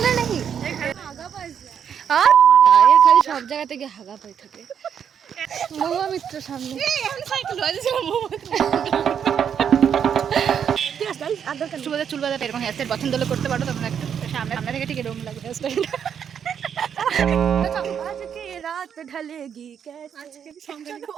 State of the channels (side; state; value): left; quieter; 8.1 dB